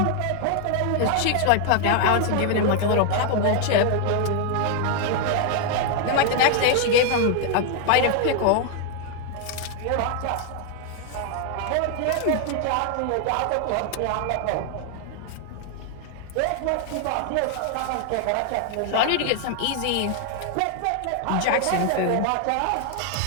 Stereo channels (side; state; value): both; different; correlation 0.00